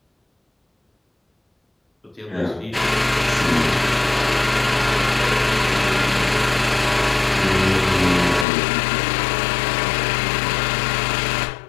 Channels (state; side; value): drops out; right; at 8.5 s